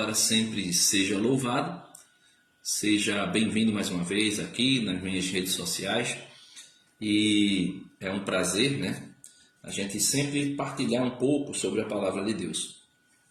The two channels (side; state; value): both; identical; correlation 1.00